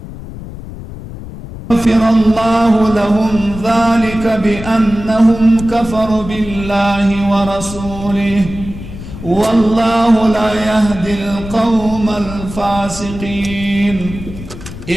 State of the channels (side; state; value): left; noise; rumble, 12 dB below the sound